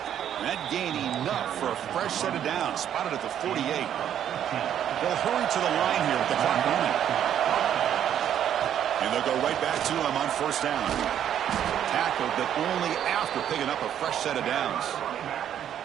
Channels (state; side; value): quieter; left; 10.0 dB